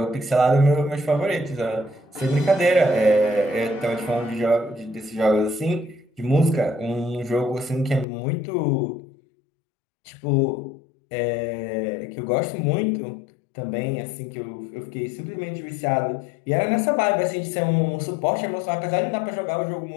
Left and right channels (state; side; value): drops out; right; at 8.1 s